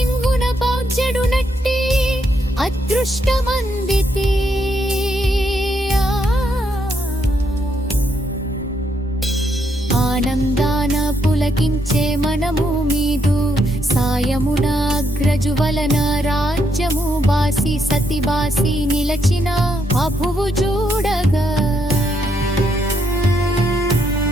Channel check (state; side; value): normal; both; correlation 0.76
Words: పౌజ్యడు నట్టి అదృష్టమందితే ఆనందాన పులకించే మనము మీదు సాయమున అగ్రజు వలన రాజ్యము బాసి సతి బాసి నిలచిన అభువు చూడగా